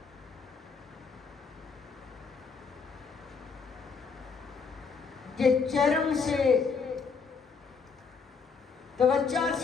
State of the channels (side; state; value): right; quieter; 5.3 dB